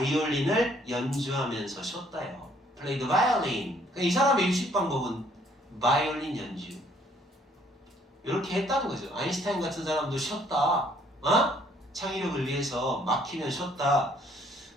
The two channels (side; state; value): both; normal; correlation 0.63